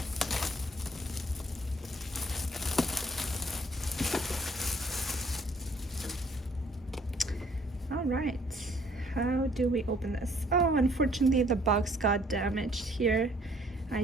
All right. How do we open this? Oh, unfortunately the box got damaged here.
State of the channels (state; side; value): normal; both; correlation 0.61